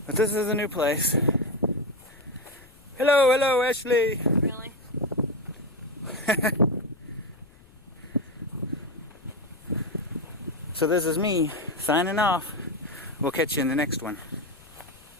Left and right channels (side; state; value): left; noise; rumble, 25 dB below the sound